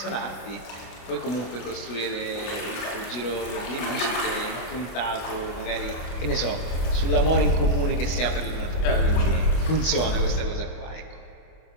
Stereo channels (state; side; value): late; right; 24 ms